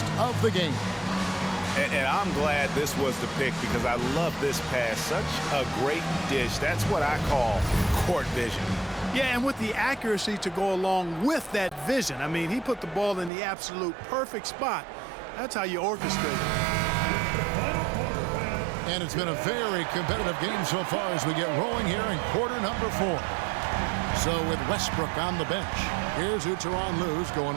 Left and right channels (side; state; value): left; drops out; at 13.3 s